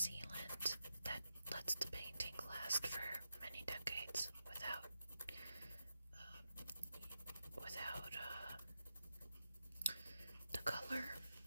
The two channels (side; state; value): both; inverted; correlation -0.86